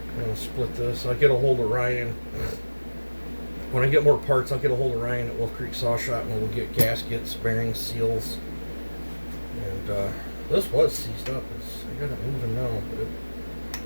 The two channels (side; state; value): both; inverted; correlation -1.00